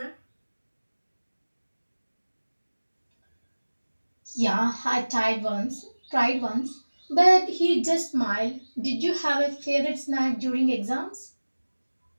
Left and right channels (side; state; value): both; inverted; correlation -1.00